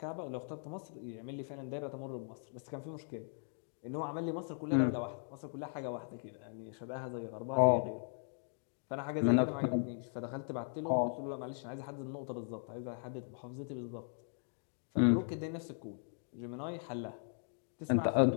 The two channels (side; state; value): right; silent; digital silence